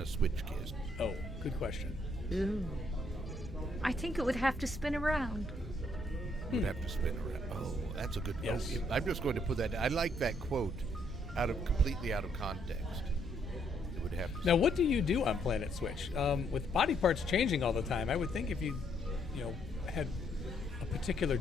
a switch kiss? Oh, good question. Ooh. I think it would have to spin around. Would have to spin around. Oh, that's a good. Yes. Oh, I'm just going to put that. I like that quote, completely out of context. It would have to. Now, what do you do on PlanetSwitch? With body parts changing all the time, I would think if you had a particular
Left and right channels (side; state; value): both; normal; correlation 0.71